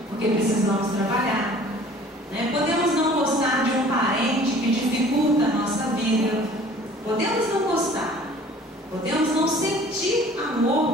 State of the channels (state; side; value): normal; both; correlation 0.50